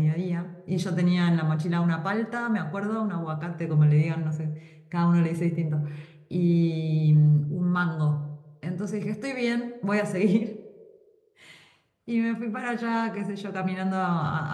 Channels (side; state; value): both; identical; correlation 1.00